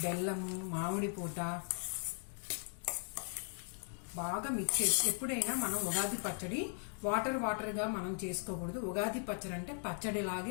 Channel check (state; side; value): silent; right; 52 dB below the other